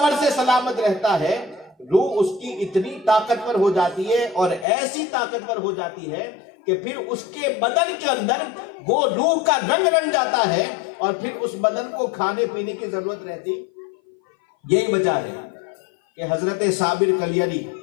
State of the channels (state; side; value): drops out; right; at 4.7 s